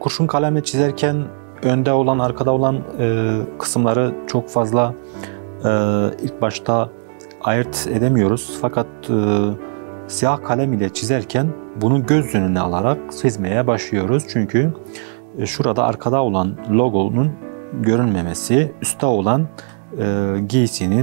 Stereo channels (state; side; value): silent; left; digital silence